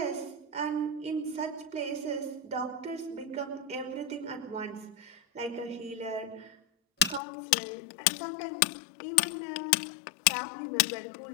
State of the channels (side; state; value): right; drops out; at 7.2 s